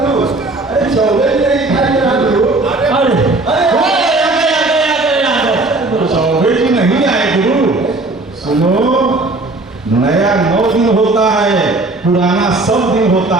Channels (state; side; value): quieter; left; 3.1 dB